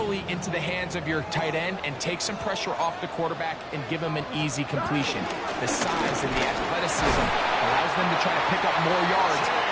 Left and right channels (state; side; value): identical; both; correlation 1.00